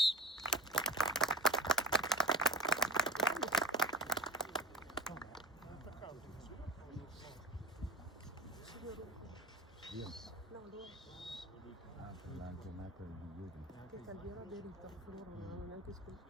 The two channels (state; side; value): normal; both; correlation 0.33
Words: La giornata di ieri. Che Calviero ha derito, loro non hanno neanche